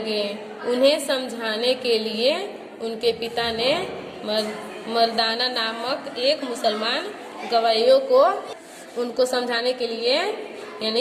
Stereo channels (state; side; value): identical; both; correlation 1.00